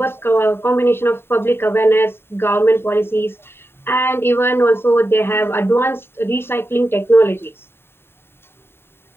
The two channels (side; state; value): right; late; 0.11 ms